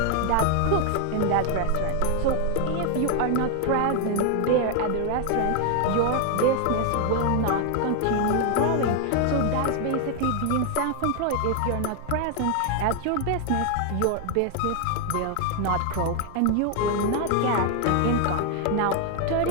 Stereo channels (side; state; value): both; different; correlation 0.00